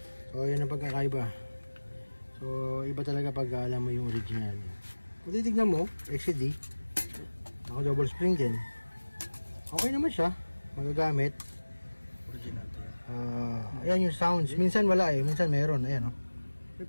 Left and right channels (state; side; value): inverted; both; correlation -1.00